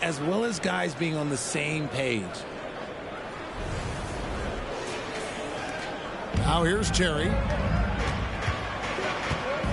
well as guys being on the same page. Now here's Terry.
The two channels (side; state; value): both; identical; correlation 1.00